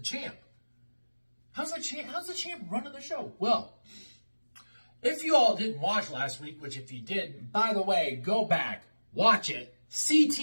running the show? Well, if you all didn't watch last week, which if you did, by the way, go back, watch it,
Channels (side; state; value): both; inverted; correlation -1.00